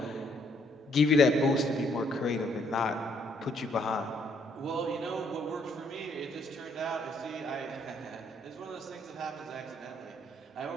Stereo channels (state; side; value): normal; both; correlation 0.68